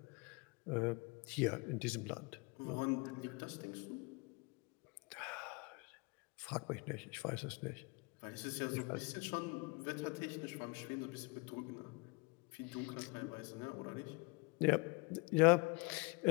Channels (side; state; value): right; quieter; 28.9 dB